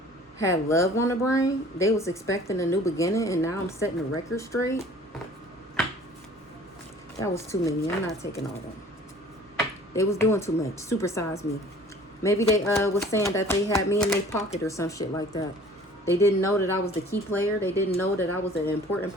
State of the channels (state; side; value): normal; both; correlation 0.49